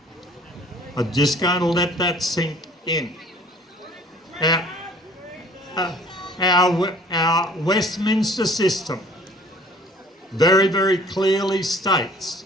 I'm just going to let that sink in. Our Westminster system very, very clearly states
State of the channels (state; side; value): normal; both; correlation 0.52